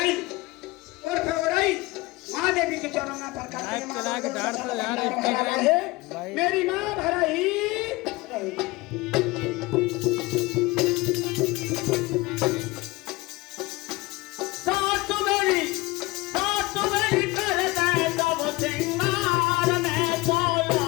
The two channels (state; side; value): quieter; right; 21.9 dB